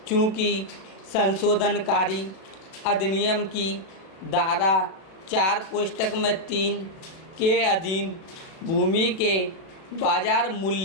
चूँकि संशोधनकारी अधिनियम की धारा 4 कोष्टक में 3 के अधीन भूमि के बाजार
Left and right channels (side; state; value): right; late; 37 ms